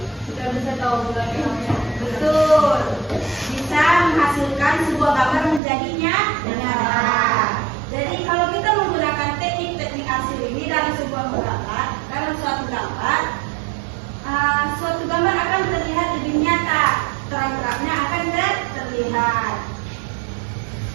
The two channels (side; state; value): left; drops out; at 5.6 s